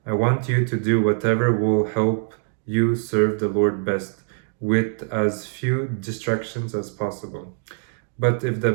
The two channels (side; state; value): left; silent; 58 dB below the other